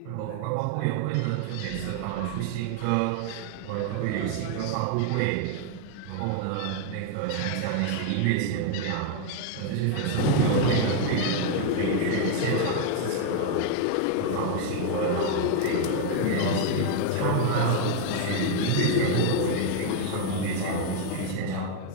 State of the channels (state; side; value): different; both; correlation 0.00